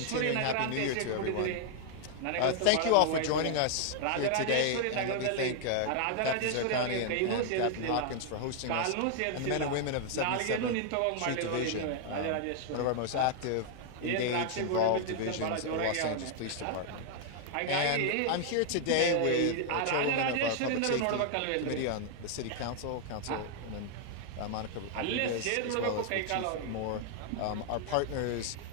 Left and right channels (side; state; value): both; different; correlation 0.00